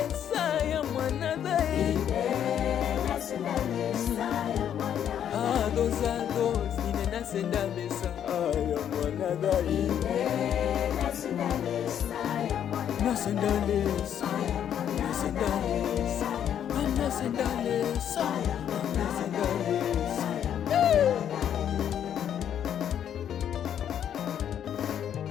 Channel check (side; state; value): right; quieter; 9.5 dB